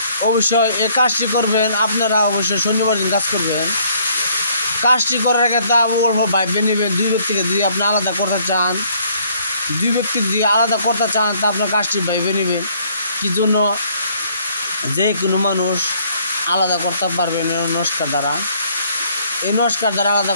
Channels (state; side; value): inverted; both; correlation -0.64